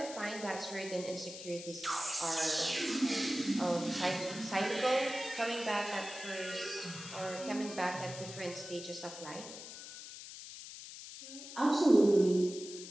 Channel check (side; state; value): left; noise; hiss, 12 dB below the sound